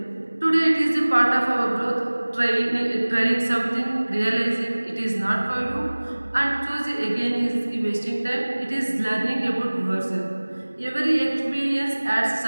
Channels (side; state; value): both; inverted; correlation -1.00